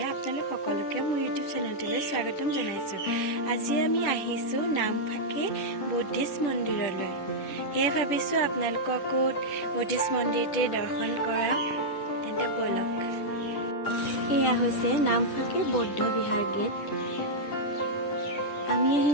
আপোনালোক সকলোকে মোৰ ইউটিউব চেনেলটোলৈ স্বাগতম জনাইছোঁ। আজি আমি আহিছোঁ নামফাকে বুদ্ধিষ্ট মন্দিৰলৈ। সেয়ে ভাবিছোঁ আপোনালোককো বুদ্ধিষ্ট মন্দিৰটিৰ দৰ্শন কৰাওঁ। তেন্তে ব'লক। এয়া হৈছে নামফাকে বৌদ্ধ বিহাৰ গেট। আমি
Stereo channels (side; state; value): right; late; 10 ms